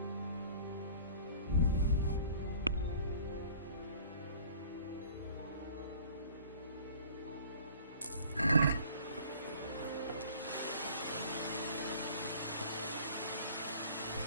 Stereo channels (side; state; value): both; inverted; correlation -0.48